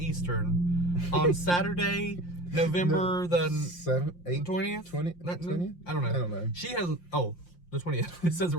on Saturday, November the 20th? 20th? I don't know. She has... Oh, the 20th. It says it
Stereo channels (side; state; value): right; late; 5.7 ms